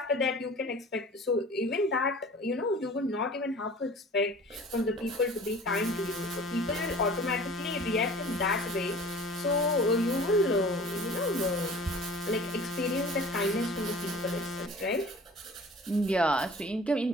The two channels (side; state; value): both; normal; correlation 0.44